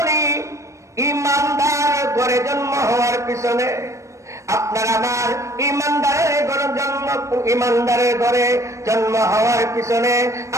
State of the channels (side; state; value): left; late; 0.15 ms